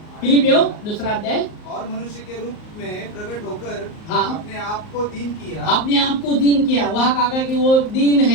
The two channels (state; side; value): late; right; 38 ms